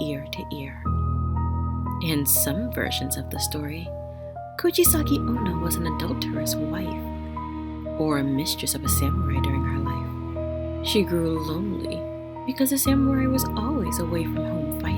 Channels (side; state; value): both; identical; correlation 1.00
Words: to ear. In some versions of the story, Kuchisake-Onna was an adulterous wife or a mistress of a samurai during her life. She grew lonely because the samurai was always away from home